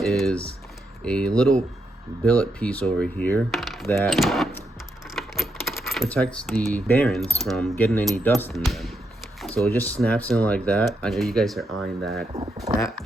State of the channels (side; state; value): both; normal; correlation 0.81